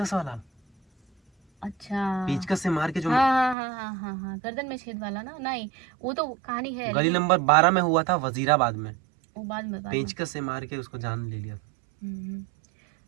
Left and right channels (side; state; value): left; drops out; at 3.6 s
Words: वाला, अच्छा पेचकस से मार के जो हाँ हाँ हाँ हाँ हाँ हाँ, गर्दन में छेद वाला ना, नहीं वो तो कहानी है गली लेकिन नंबर 12 में हुआ था, वजीराबाद में। वो बाद में पेचकस से मार के उसको जान ले लिया था।